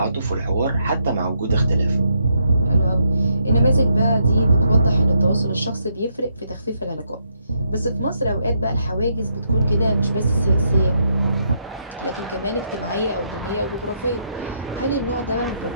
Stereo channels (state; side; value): inverted; both; correlation -0.77